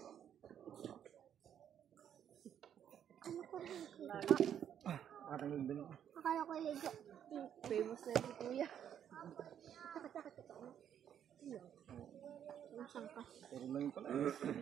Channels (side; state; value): left; quieter; 9.4 dB